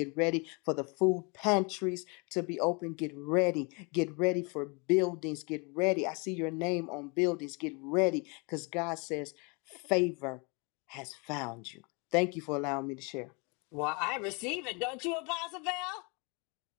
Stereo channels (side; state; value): right; quieter; 31.4 dB